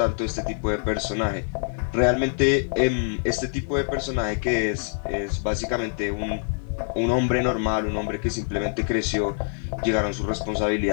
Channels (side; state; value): right; silent; digital silence